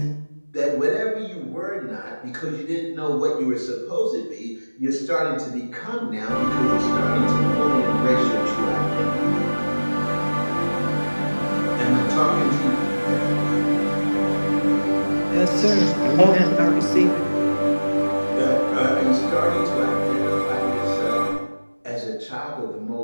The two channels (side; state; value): both; inverted; correlation -1.00